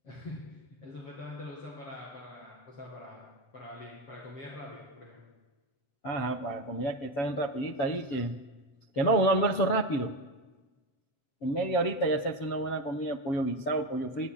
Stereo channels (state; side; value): late; right; 7.2 ms